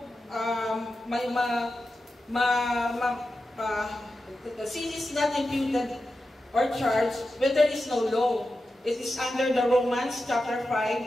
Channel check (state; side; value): normal; both; correlation 0.91